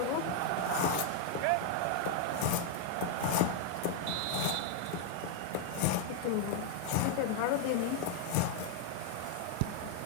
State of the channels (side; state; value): both; different; correlation 0.00